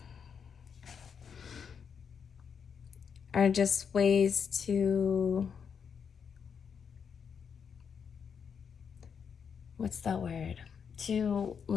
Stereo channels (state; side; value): quieter; right; 6.8 dB